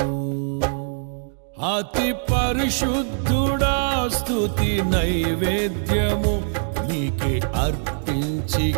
అతి పరిశుద్ధుడా స్తుతి నైవేద్యము నీకే అర్పించి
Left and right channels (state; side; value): silent; left; digital silence